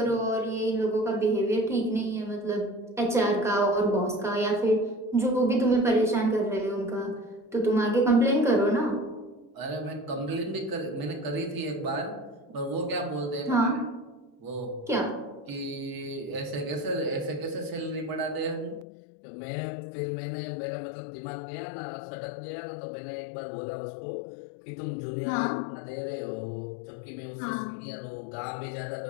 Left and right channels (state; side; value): drops out; right; at 18.9 s